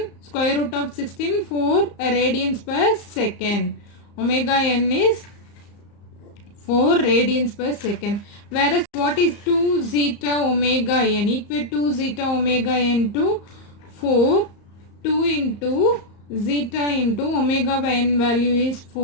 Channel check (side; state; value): right; late; 34 ms